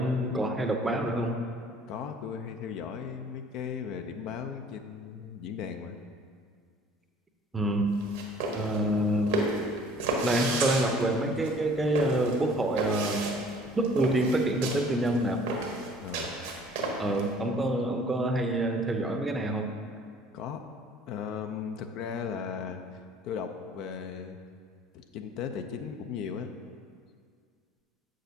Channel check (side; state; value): both; normal; correlation 0.53